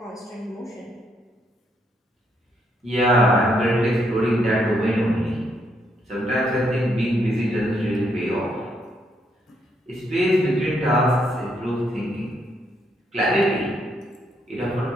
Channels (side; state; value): both; normal; correlation 0.75